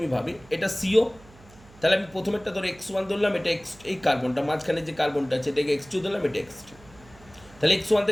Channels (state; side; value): noise; right; hum, 24 dB below the sound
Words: ভাবি এটা CO, তাহলে আমি প্রথমেরটা ধরো x1 ধরলাম, এটা এই কার্বনটা মাঝখানে যে কার্বনটা আছে এটাকে x2 ধরলাম, এটা x3, তাহলে x1